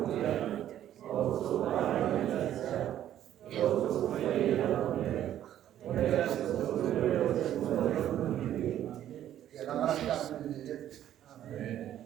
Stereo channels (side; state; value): left; quieter; 11.5 dB